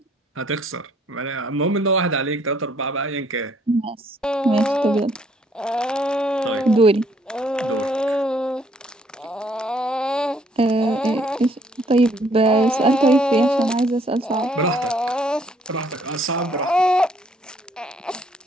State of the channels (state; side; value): normal; both; correlation 0.65